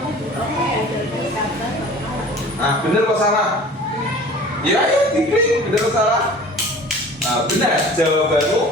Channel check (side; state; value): both; normal; correlation 0.44